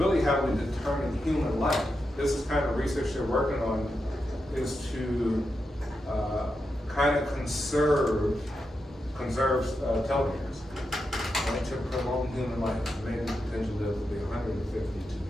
how we determine human life. This is kind of research they're working on, is to kind of conserve telomeres, right, to prolong human life. Maybe potentially live to be 150 to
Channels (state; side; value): normal; both; correlation 0.87